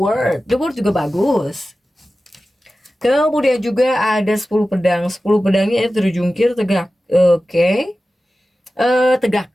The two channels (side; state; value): both; normal; correlation 0.95